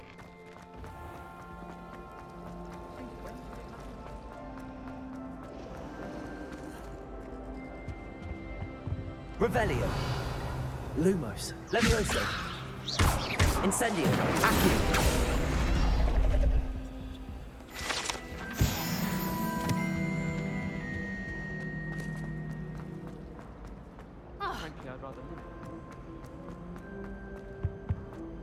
Revelio. Lumos. Levioso. Incendio. Accio. Frankly, I'd rather live.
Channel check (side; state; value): both; identical; correlation 1.00